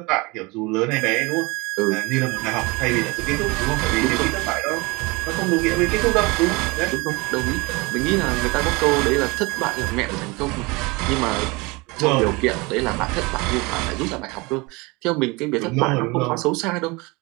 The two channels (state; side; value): quieter; left; 25.5 dB